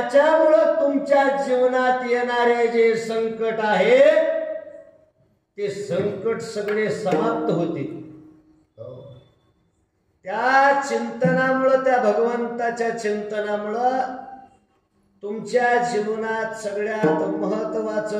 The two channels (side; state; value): both; identical; correlation 1.00